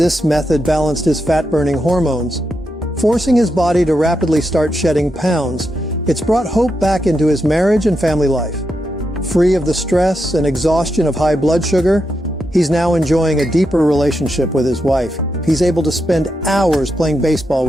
method balanced his fat-burning hormones. Forcing his body to rapidly start shedding pounds, it's brought hope back into his marriage and family life. Free of the stress and exhaustion of high blood sugar, he's now enjoying a deeper relationship with his wife. He's able to spend hours playing baseball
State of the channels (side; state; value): both; normal; correlation 0.85